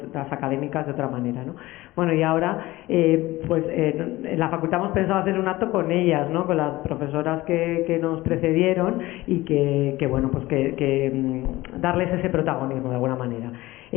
académicas de otra manera, ¿no? Bueno, y ahora, en la facultad hemos pensado hacer un acto con ellas, ¿no?, con las profesoras que nos precedieron y que bueno, pues que darles ese protagonismo de alguna manera.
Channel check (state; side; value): quieter; right; 18.6 dB